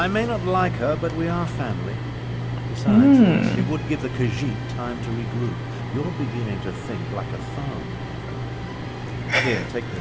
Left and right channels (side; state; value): both; identical; correlation 1.00